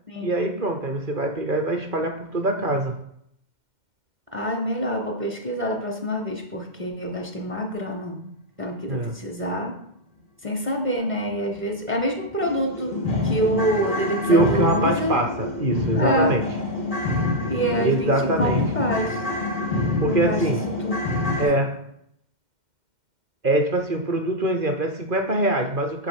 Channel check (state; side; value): late; left; 2.1 ms